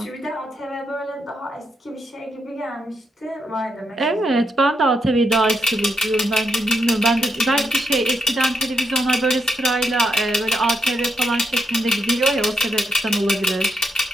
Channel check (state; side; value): normal; both; correlation 0.80